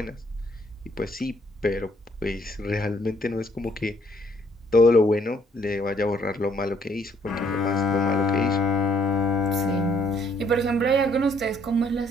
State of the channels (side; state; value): both; normal; correlation 0.66